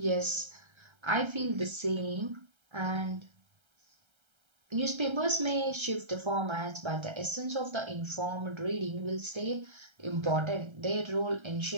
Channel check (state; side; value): late; left; 1.3 ms